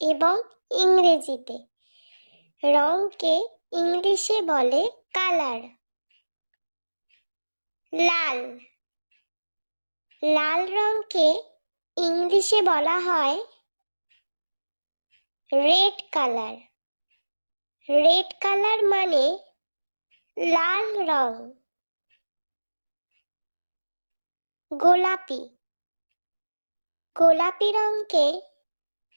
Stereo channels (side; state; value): both; inverted; correlation -1.00